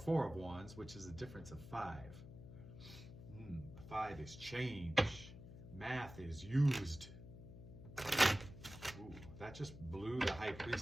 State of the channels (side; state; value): left; noise; hum, 14 dB below the sound